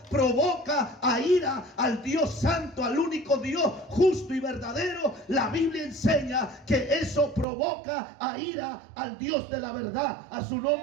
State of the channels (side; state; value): left; drops out; at 7.5 s